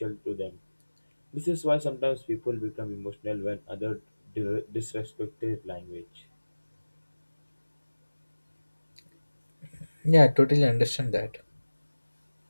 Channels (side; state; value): both; inverted; correlation -1.00